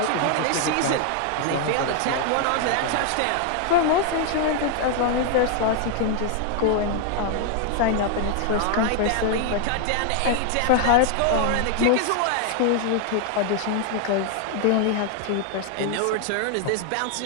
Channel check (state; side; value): different; both; correlation 0.00